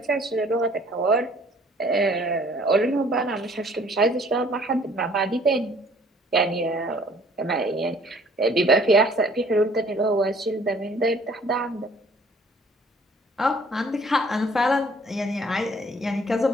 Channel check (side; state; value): both; normal; correlation 0.56